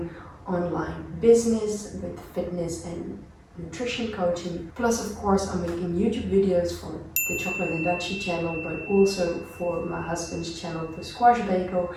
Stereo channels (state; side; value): identical; both; correlation 1.00